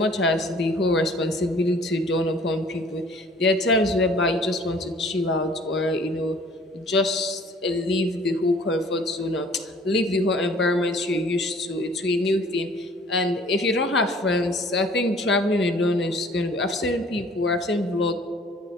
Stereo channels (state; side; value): normal; both; correlation 0.53